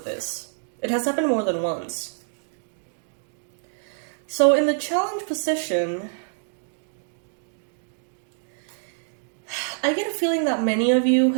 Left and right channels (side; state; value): left; silent; digital silence